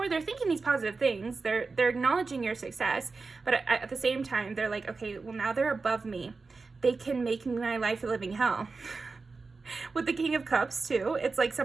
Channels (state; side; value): quieter; left; 4.2 dB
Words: they're thinking these positive things. They're acknowledging your success. But at the same time, they're like, okay, well, now they're above me. They can make my life a living hell. With the King of Cups, too, it's like